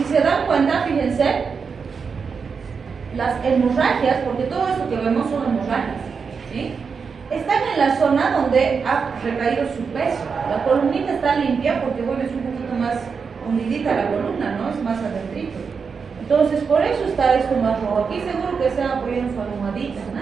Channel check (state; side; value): quieter; left; 5.6 dB